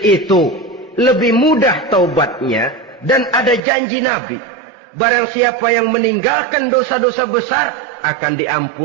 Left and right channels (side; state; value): left; drops out; at 3.6 s